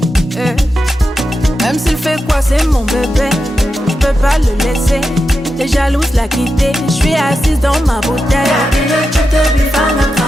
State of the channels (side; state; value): both; normal; correlation 0.89